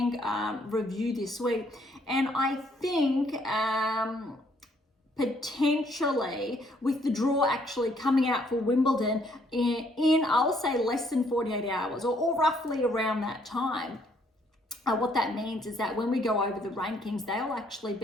review this week. And I think potentially with the draw actually coming out for Wimbledon in I'll say less than 48 hours or roughly around that time. What that means is that when we go over the rankings, they'll actually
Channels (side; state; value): both; normal; correlation 0.67